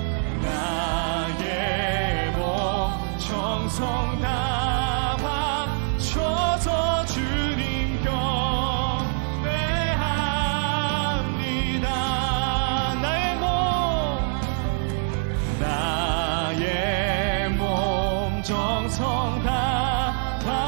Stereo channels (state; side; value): silent; left; 62 dB below the other